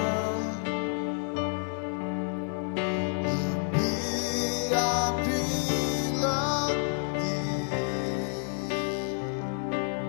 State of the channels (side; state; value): right; silent; 58 dB below the other